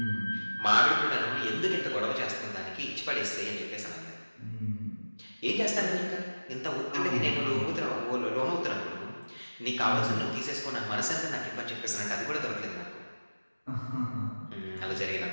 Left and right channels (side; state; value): both; inverted; correlation -1.00